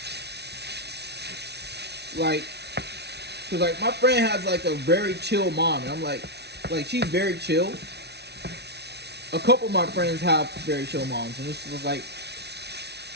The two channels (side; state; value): left; late; 0.49 ms